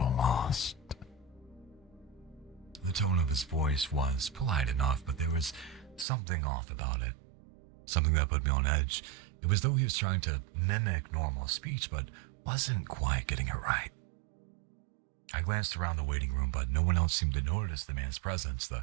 lost. The tone of his voice was polite enough, but there was something off about it. Something that put me on edge. It was though he was trying to mimic normal speech, but wasn't quite getting it right. I glanced around the waiting room, but no one else seemed to notice the man's presence. The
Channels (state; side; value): drops out; left; at 6.1 s